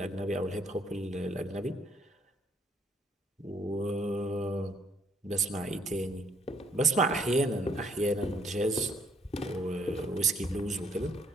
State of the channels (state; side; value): normal; both; correlation 0.67